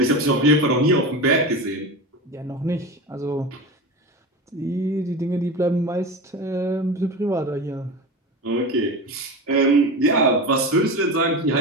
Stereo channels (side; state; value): both; normal; correlation 0.26